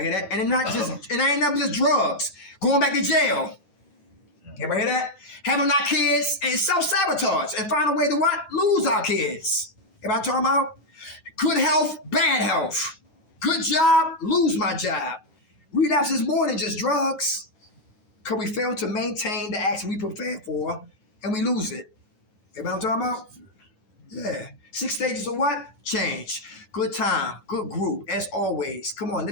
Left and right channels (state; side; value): late; right; 10 ms